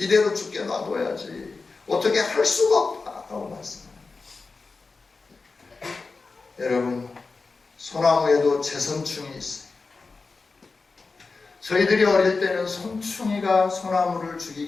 죽게 놔둬야지 어떻게 할 수가 없다고 말씀합니다. 여러분, 소나무에도 재선충이 있어요. 저희들이 어릴 때는 송충이가 소나무를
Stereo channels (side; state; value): right; quieter; 4.1 dB